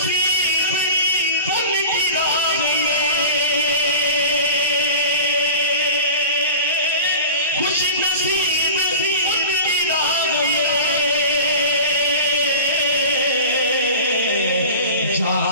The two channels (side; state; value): both; inverted; correlation -0.34